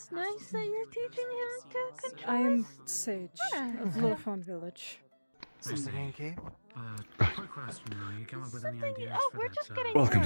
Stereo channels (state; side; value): inverted; both; correlation -1.00